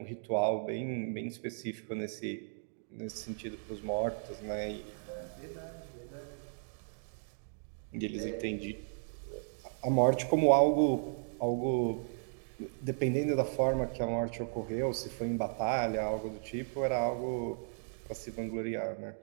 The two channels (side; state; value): left; silent; digital silence